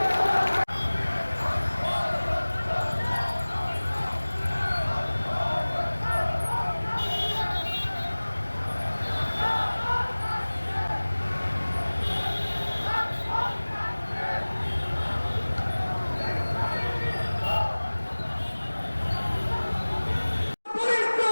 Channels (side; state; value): both; inverted; correlation -1.00